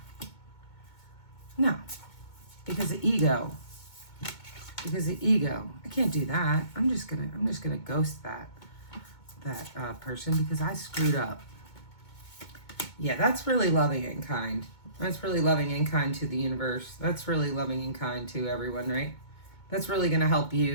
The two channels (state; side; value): late; right; 2.2 ms